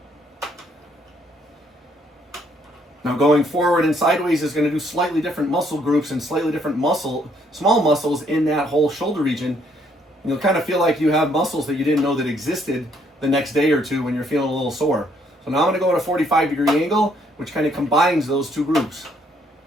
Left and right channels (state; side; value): normal; both; correlation 0.68